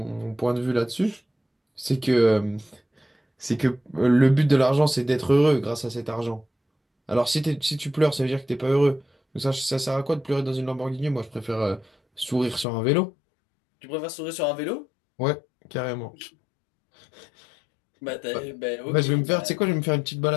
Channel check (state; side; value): drops out; right; at 12.7 s